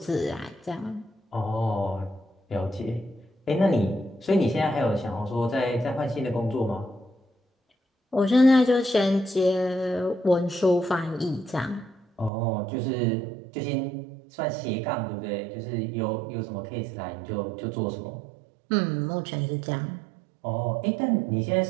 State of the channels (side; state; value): left; drops out; at 12.3 s